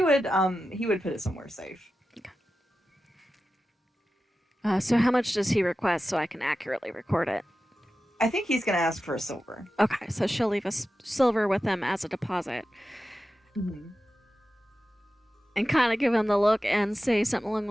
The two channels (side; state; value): both; normal; correlation 0.93